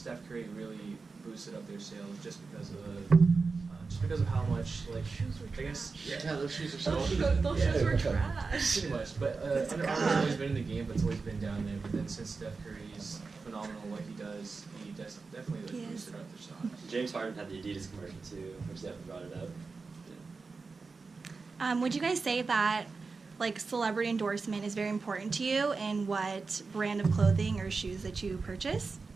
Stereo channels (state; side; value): quieter; left; 4.4 dB